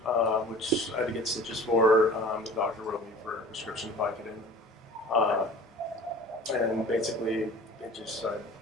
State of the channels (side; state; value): both; normal; correlation 0.43